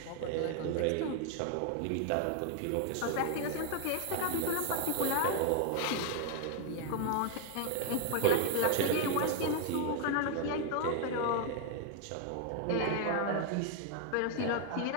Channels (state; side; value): different; both; correlation 0.00